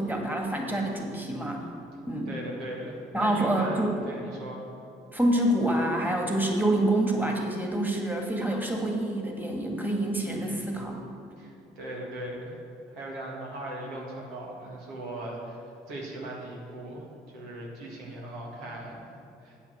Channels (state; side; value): normal; both; correlation 0.67